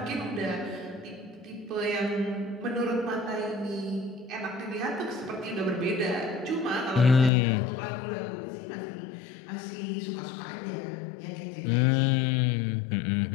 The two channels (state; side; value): drops out; right; at 7.3 s